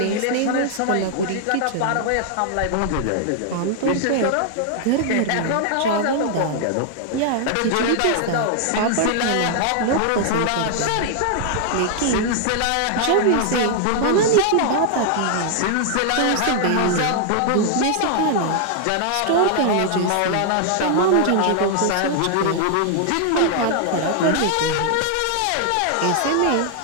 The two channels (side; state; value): both; different; correlation 0.00